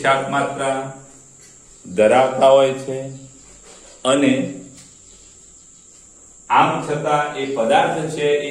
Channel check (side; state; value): both; identical; correlation 1.00